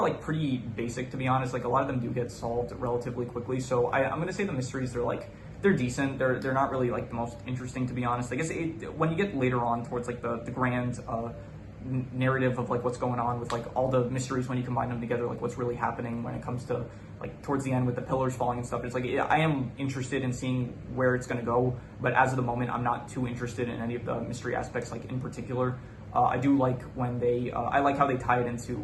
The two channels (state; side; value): identical; both; correlation 1.00